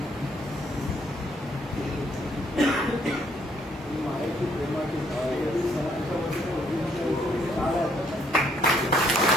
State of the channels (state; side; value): normal; both; correlation 0.68